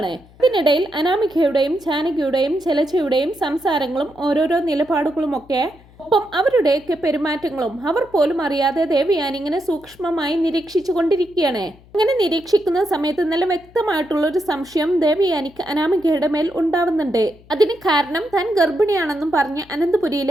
ഇതിനിടയിൽ അനാമികയുടെയും ജാനകിയുടെയും ജലജയുടെയും സംസാരങ്ങളും ഓരോരോ നിലപാടുകളുമൊക്കെ ഒപ്പം അവരുടെയൊക്കെ പെരുമാറ്റങ്ങളും അവർ പോലും അറിയാതെ ദേവയാനി ഇങ്ങനെ സൂക്ഷ്മമായി നിരീക്ഷിച്ചു കൊണ്ടിരിക്കുകയാണ്. അങ്ങനെ നിരീക്ഷിക്കുന്ന സമയത്ത് നല്ല വ്യക്തമായിട്ടുള്ള ഒരു സംശയം ദേവയാനിക്ക് അനാമികയുടെ മേൽ ഉണ്ടാവുന്നുണ്ട്. അതിന് കാരണം താൻ ഗർഭിണിയാണെന്നും പറഞ്ഞ്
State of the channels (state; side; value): noise; left; hum, 26 dB below the sound